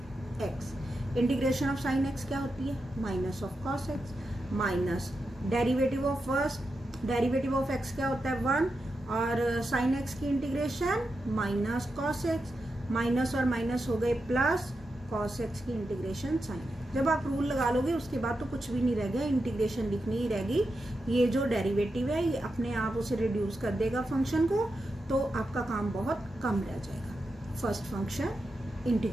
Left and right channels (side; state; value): both; normal; correlation 0.88